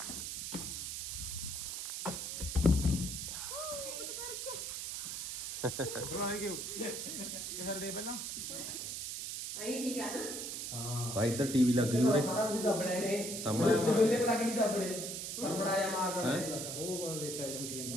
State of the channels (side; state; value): right; noise; hiss, 5 dB below the sound